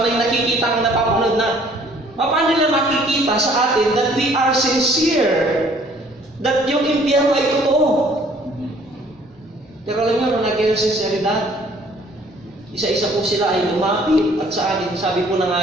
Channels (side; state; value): both; normal; correlation 0.58